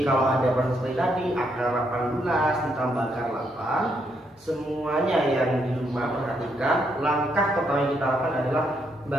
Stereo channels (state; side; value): normal; both; correlation 0.76